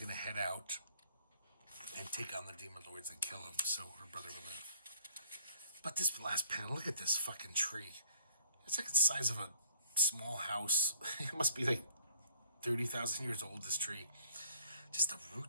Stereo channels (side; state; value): both; inverted; correlation -0.61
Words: to head out and take on the demon lords and kill them so her brother will live. But this last panel, look at this fucking tree. It's like the size of a small house. It must be like 30,000 years old, this tree. Just the